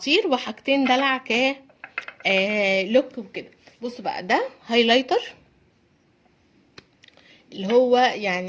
وحاجتين دلع لوك وكده. بصوا بقى، ده هايلايتر اللي هو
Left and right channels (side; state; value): both; identical; correlation 1.00